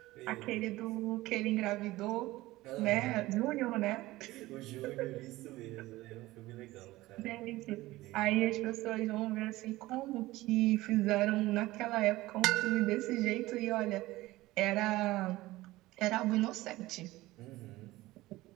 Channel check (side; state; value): left; quieter; 18.2 dB